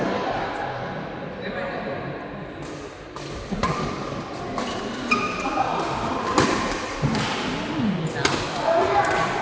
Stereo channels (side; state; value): both; identical; correlation 1.00